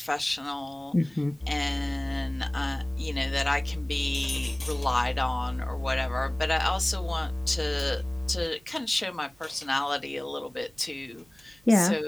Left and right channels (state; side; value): noise; right; hum, 29 dB below the sound